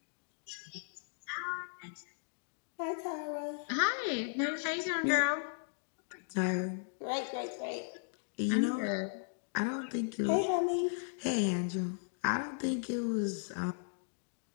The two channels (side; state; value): right; silent; digital silence